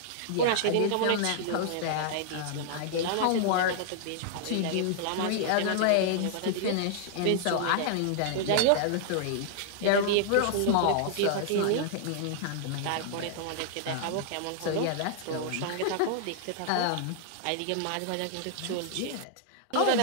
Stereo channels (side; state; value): both; different; correlation -0.01